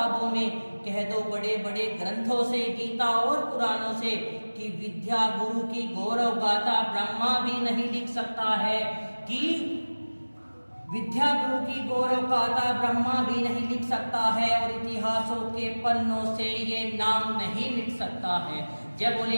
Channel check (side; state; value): both; inverted; correlation -1.00